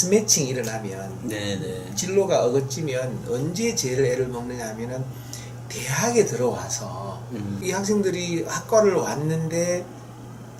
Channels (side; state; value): both; identical; correlation 1.00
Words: 일어나면, 네네. 진로가 어긋지면 언제 제일 애를 먹느냐 하면은 대학에 들어와서 이 학생들이 학과를 왔는데,